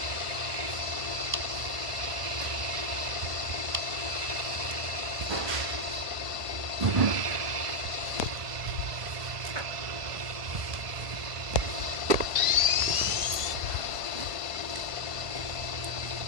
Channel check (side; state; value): left; late; 1.5 ms